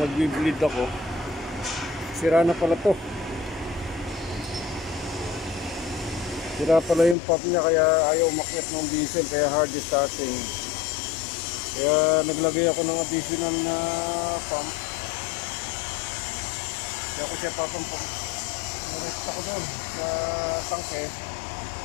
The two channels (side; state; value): right; drops out; at 7.2 s